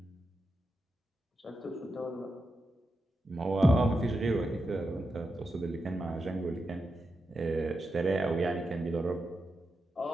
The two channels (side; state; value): both; normal; correlation 0.87